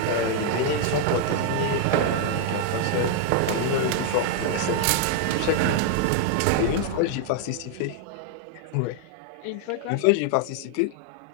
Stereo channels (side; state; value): both; different; correlation 0.00